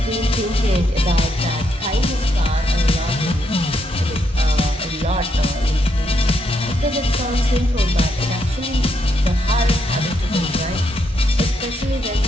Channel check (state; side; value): normal; both; correlation 0.78